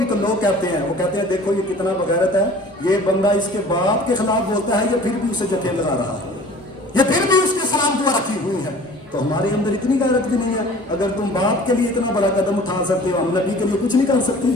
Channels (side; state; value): both; normal; correlation 0.46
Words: तो लोग कहते हैं, वो कहते हैं देखो ये कितना बगैरत है, ये बंदा इसके बाप के खिलाफ बोलता है, ये फिर भी उसे जठे लगा रहा है, ये फिर भी उसके सलाम दुआ रखी हुई है। तो हमारे अंदर इतनी गैरत भी नहीं है। अगर तुम बाप के लिए इतना बड़ा कदम उठा सकते हो, हम नबी के लिए कुछ नहीं कर सकते?